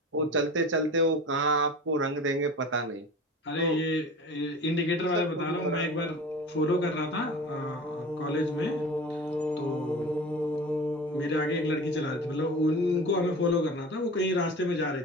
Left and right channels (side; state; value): both; normal; correlation 0.36